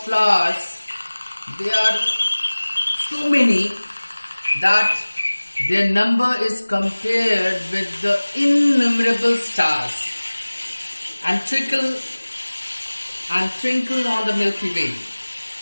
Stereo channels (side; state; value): both; inverted; correlation -1.00